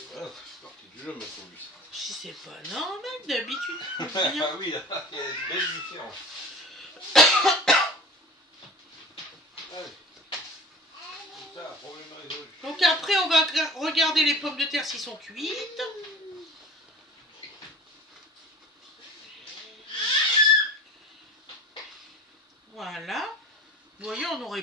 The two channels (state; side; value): normal; both; correlation 0.40